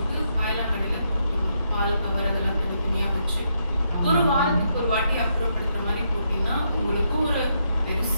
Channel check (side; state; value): both; inverted; correlation -0.78